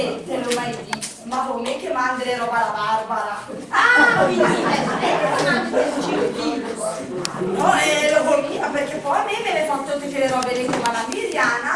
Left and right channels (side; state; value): both; identical; correlation 1.00